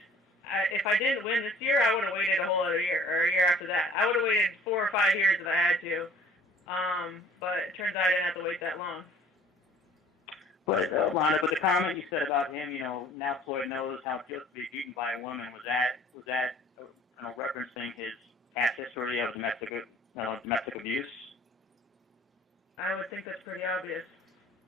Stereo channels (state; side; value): normal; both; correlation 0.52